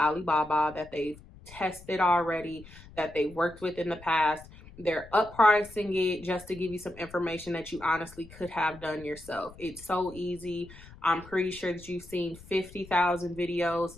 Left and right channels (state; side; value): noise; left; rumble, 20 dB below the sound